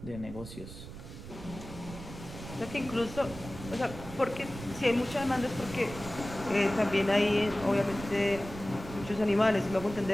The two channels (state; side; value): noise; right; rumble, 12 dB below the sound